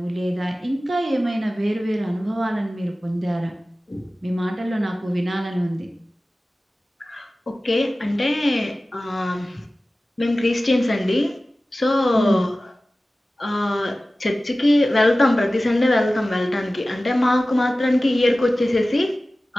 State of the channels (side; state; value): both; normal; correlation 0.96